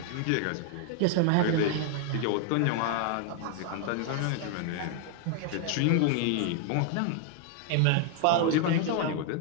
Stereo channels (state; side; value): different; both; correlation 0.00